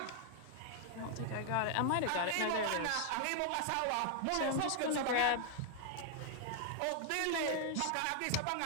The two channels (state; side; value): different; both; correlation 0.00